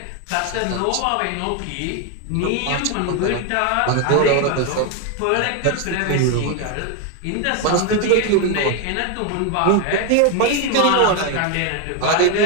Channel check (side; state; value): both; different; correlation 0.01